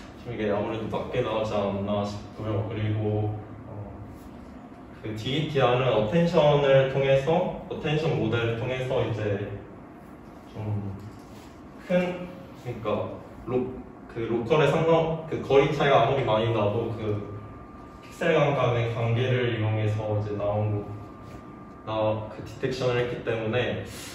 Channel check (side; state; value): both; identical; correlation 1.00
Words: 좀 이게 아무래도 낮게 나오지 않나 싶고요. 그리고 그 DETR은 어텐션 모델을 통해서 이제 좀 그러니까 그 로컬의 그 거리 차이가 아무리 많이 나도 그 픽셀 간의 관계를 이용해서 이제 그 디텍션을 했기 때문에